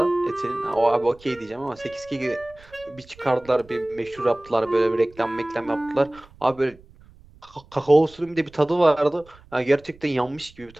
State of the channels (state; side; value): noise; right; rumble, 25 dB below the sound